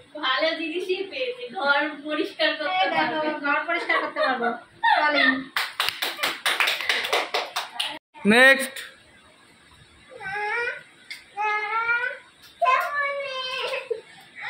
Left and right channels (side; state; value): both; identical; correlation 1.00